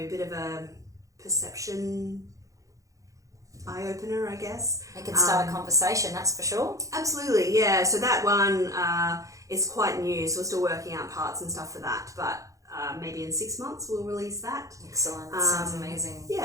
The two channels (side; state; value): left; late; 0.16 ms